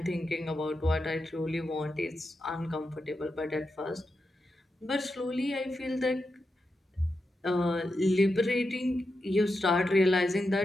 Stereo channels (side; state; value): both; normal; correlation 0.88